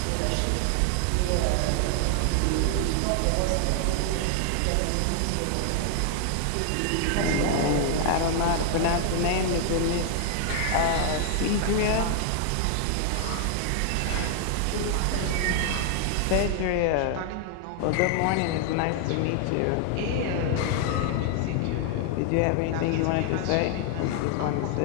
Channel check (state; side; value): different; both; correlation 0.00